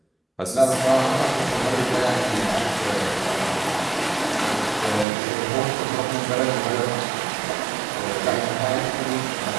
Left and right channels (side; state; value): left; drops out; at 5.1 s